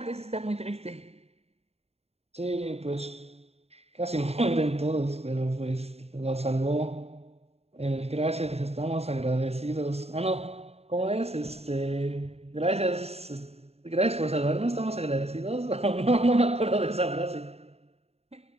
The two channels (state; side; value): late; left; 0.30 ms